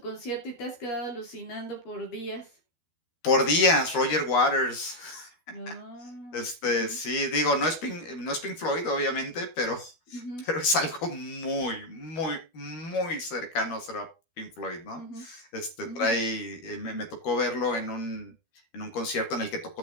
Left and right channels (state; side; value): late; right; 12 ms